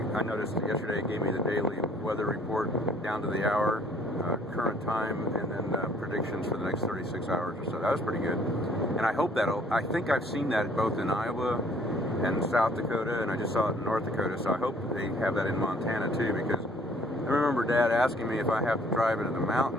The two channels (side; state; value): both; normal; correlation 0.59